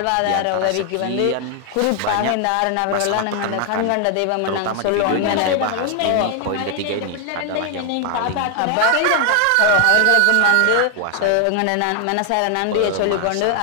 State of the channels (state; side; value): different; both; correlation 0.00